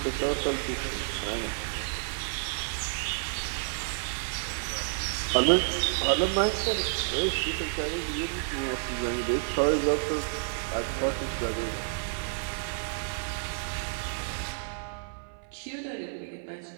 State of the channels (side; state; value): left; silent; 58 dB below the other